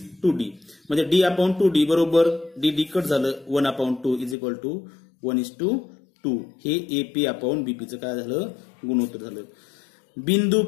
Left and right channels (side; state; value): right; drops out; at 4.4 s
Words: 2D म्हणजे D अपॉन 2D बरोबर D कट झालं 1/2 = 1:2. हे AP अपॉन BP चं काय झालं, गुणोत्तर झालं. बिंदू